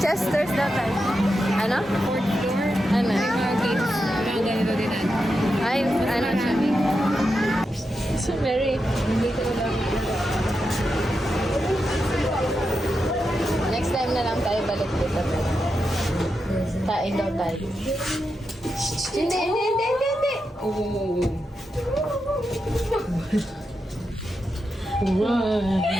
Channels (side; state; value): both; normal; correlation 0.87